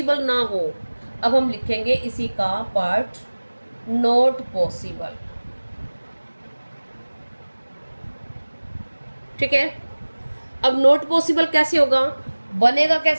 ना हो। अब हम लिखेंगे इसी का पार्ट, नॉट पॉसिबल। ठीक है, अब नॉट पॉसिबल कैसे होगा, बनेगा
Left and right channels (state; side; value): inverted; both; correlation -1.00